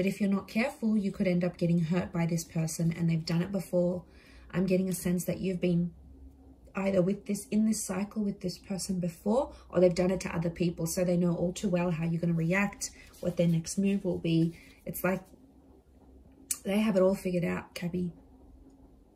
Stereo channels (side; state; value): both; identical; correlation 1.00